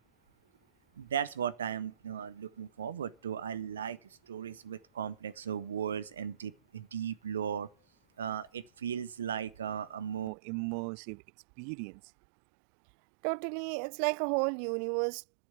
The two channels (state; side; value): drops out; left; at 10.3 s